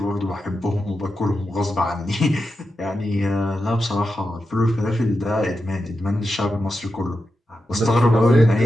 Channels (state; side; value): normal; both; correlation 0.89